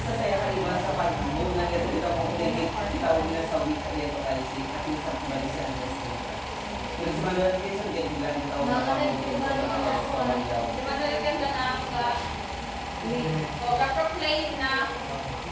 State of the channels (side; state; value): both; identical; correlation 1.00